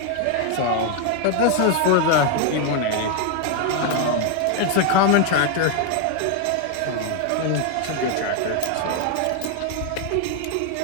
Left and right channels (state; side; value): different; both; correlation 0.01